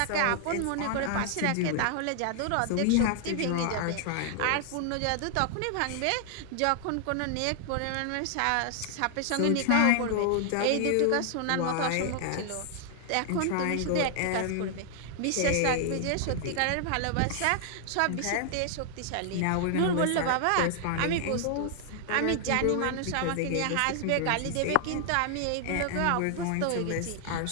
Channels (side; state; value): both; different; correlation 0.00